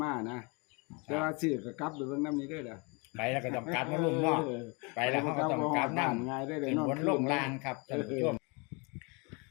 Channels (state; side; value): quieter; right; 30.6 dB